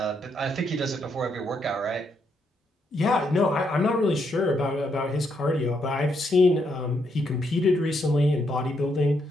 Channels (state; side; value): normal; both; correlation 0.77